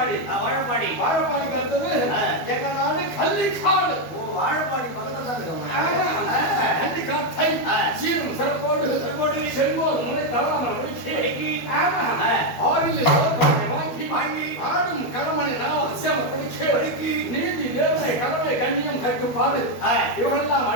வாழப்பாடிக்கு அடுத்தது எங்க நாடு கள்ளிக்காடு. வாழப்பாடி பக்கத்துல தான் இருக்கும். ஆமா, கள்ளிக்காட்டை சீரும் சிறப்போடு செல்வோர் முனை தவறாமல் முடிக்கி. ஆமா, ஆறில் வாங்கி ஆடும் கடமனை அவசியம் படிக்கி நீதி நேர்மை கடமை கண்ணியம் கட்டுப்பாடு இவரெல்லாம்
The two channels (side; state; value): right; late; 12 ms